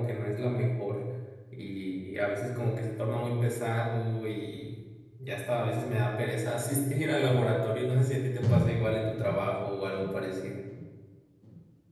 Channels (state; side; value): identical; both; correlation 1.00